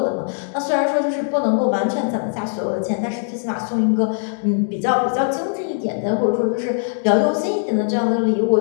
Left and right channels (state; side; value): silent; right; digital silence